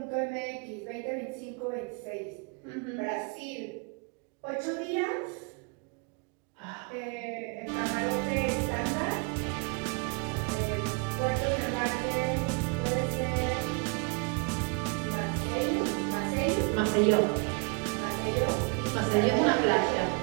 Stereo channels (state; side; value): quieter; left; 33.5 dB